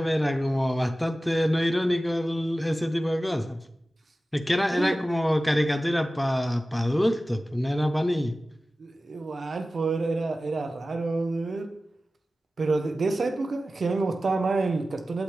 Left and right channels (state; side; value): normal; both; correlation 0.96